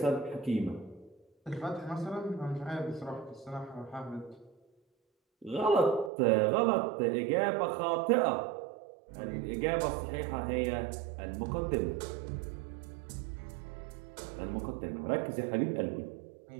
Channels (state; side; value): drops out; left; at 6.1 s